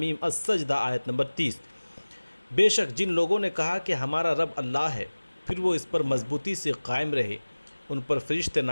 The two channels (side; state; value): both; inverted; correlation -1.00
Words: السجدہ آیت نمبر 30۔ بے شک جن لوگوں نے کہا کہ ہمارا رب اللہ ہے، پھر وہ اس پر مضبوطی سے قائم رہے، ان پر فرشتے